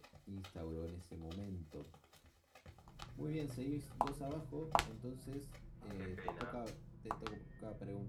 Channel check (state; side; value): identical; both; correlation 1.00